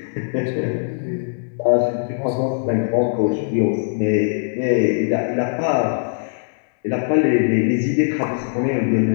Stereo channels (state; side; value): silent; right; digital silence